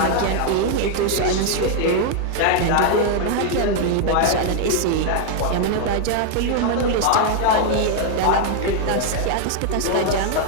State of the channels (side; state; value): both; different; correlation 0.00